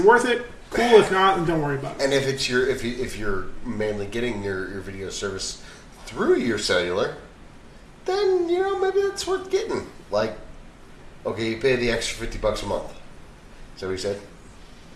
worth it? Cool. If not, then don't worry about it. And if you're mainly getting your video service through your cellular, then maybe it's worth getting. Like, okay, you pay the extra $50 a month. Is that what you said?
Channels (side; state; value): both; identical; correlation 1.00